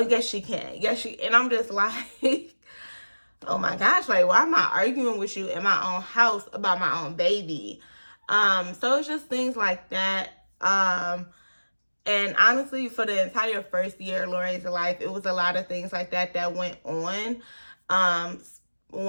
yes, she can. Yes, and I'm just like, oh my gosh, like, why am I arguing with you in my own house about my own baby? So it's just things like that. And honestly, for the entire first year of Lori's life, it was a lot of things like that went on.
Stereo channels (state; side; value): inverted; both; correlation -1.00